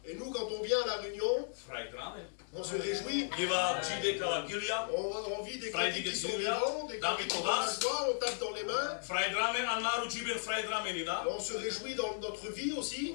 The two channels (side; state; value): right; silent; digital silence